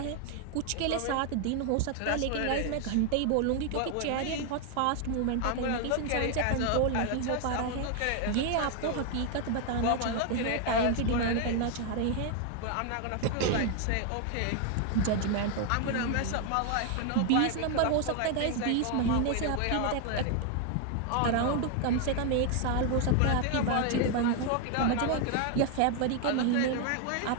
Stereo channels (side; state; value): both; different; correlation 0.00